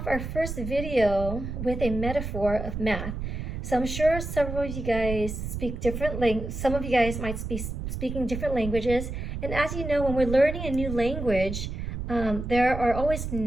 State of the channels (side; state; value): right; noise; rumble, 5 dB below the sound